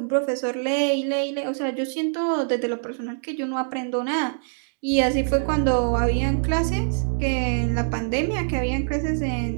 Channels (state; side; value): silent; left; digital silence